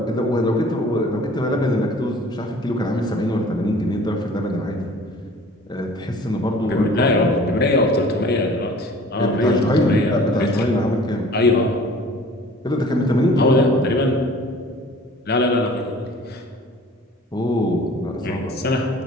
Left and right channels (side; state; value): both; normal; correlation 0.48